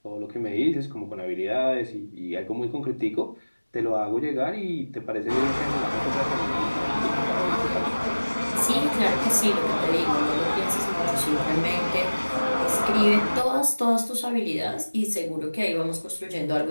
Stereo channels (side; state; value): both; inverted; correlation -1.00